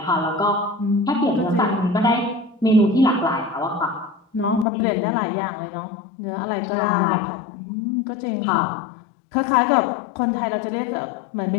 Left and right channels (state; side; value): drops out; right; at 4.7 s